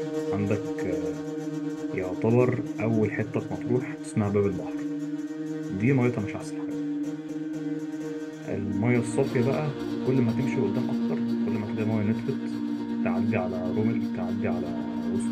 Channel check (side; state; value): both; identical; correlation 1.00